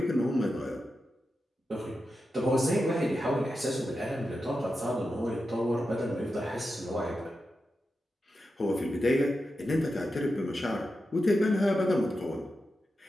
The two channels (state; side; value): normal; both; correlation 0.90